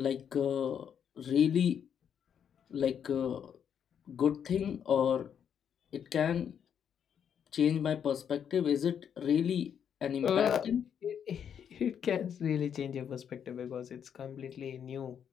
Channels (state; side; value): quieter; right; 8.2 dB